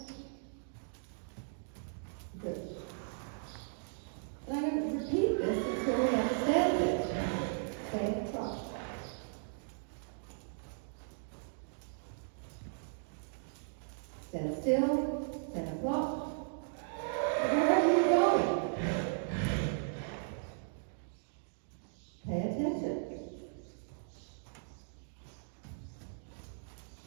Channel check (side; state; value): left; silent; digital silence